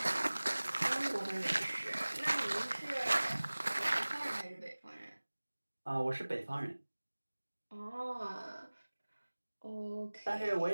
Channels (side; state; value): both; inverted; correlation -1.00